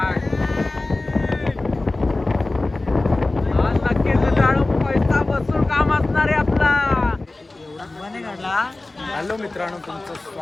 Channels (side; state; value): right; quieter; 3.0 dB